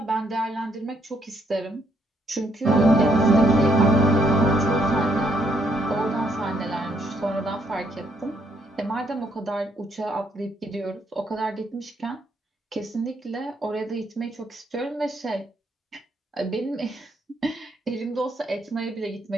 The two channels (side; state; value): both; normal; correlation 0.72